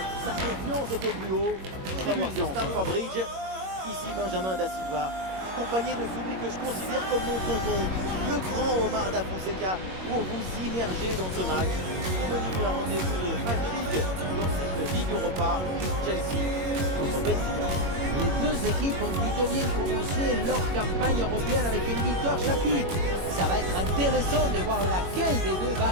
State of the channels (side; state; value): left; late; 21 ms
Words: Sa confiance était plus haut. Tribune de Stamford Bridge. Ici Benjamin Da Silva, accompagné de celui que je considère comme mon tonton, le grand Omar Da Fonseca, pour vous immerger dans ce match. Au menu, un rendez-vous de phase de ligue dans cette Ligue Europa, Chelsea contre Benfica. Les deux équipes ont plutôt bien commencé leur campagne européenne avec une victoire chacune. Ça va être intéressant de voir laquelle des deux va